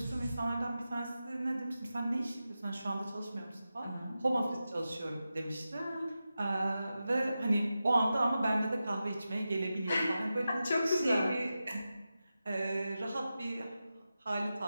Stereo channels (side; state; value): both; inverted; correlation -0.92